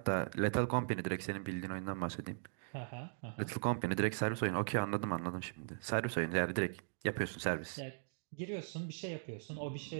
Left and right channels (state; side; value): silent; left; digital silence